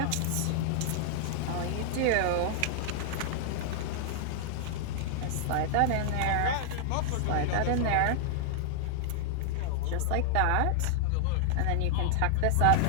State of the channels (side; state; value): both; different; correlation -0.01